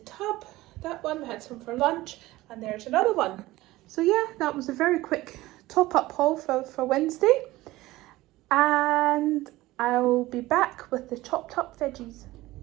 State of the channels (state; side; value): quieter; left; 18.0 dB